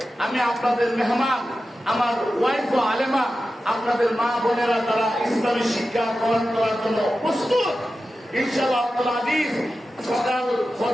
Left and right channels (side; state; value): both; normal; correlation 0.93